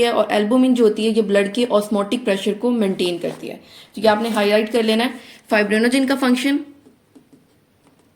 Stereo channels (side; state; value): both; identical; correlation 1.00